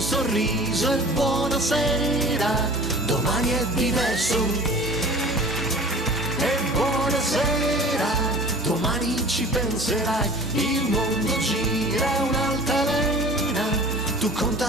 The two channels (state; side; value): normal; both; correlation 0.43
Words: sorriso e buonasera. Domani è diverso e buonasera. Domani ci penserai, il mondo gira un'altalena. Tu